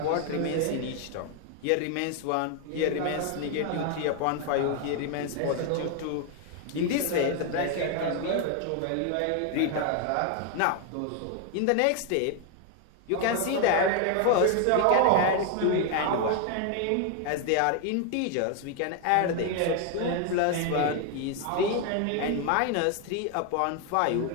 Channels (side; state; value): both; different; correlation 0.01